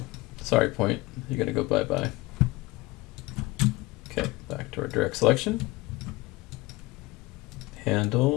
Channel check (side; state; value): right; quieter; 21.1 dB